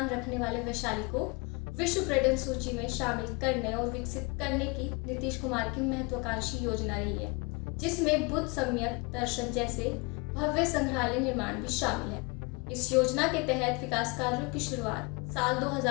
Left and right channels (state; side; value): quieter; right; 28.6 dB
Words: रखने वाले वैशाली को विश्व पर्यटन सूची में शामिल करने और विकसित करने की नीतीश कुमार की महत्वाकांक्षी योजना रही है, जिसमें बुद्ध सम्यक दर्शन जैसे भव्य संग्रहालय निर्माण भी शामिल है। इस योजना के तहत विकास कार्यों की शुरुआत साल